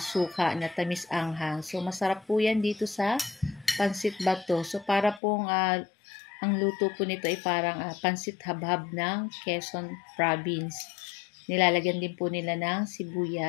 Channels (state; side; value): drops out; right; at 5.2 s